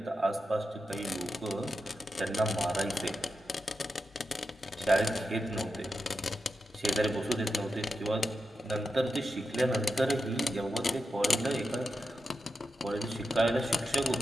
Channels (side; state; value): both; normal; correlation 0.88